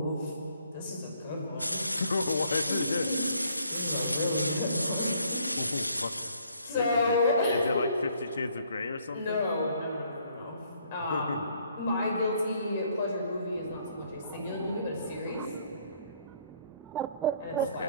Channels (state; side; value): inverted; both; correlation -0.65